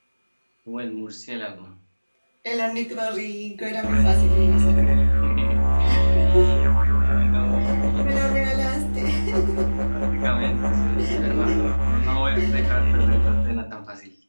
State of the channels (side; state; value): both; inverted; correlation -1.00